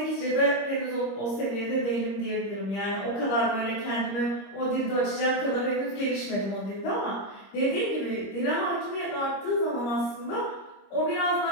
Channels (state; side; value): late; right; 25 ms